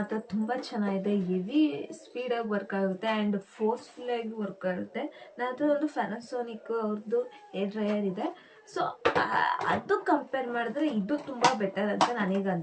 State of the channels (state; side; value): identical; both; correlation 1.00